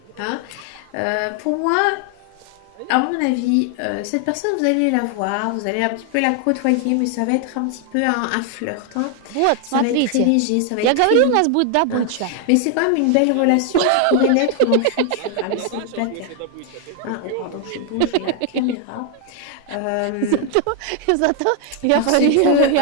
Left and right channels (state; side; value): different; both; correlation 0.00